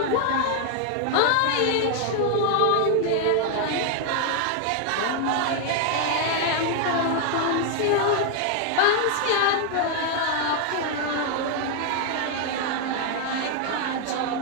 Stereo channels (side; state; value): both; different; correlation 0.00